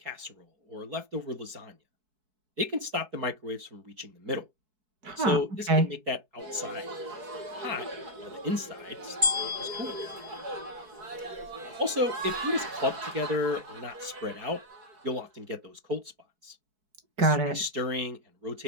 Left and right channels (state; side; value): late; left; 4.6 ms